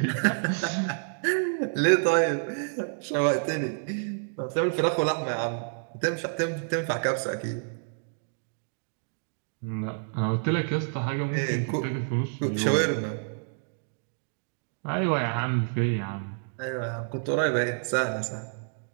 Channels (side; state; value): left; silent; digital silence